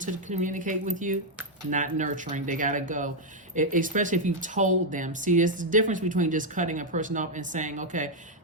communicate with you. Not nurturing. They got to go. Especially if you've told them. See, there's the difference between just cutting a person off and saying, okay,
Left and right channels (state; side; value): normal; both; correlation -0.01